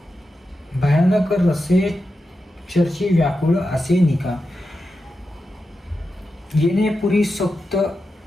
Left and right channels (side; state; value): both; normal; correlation 0.89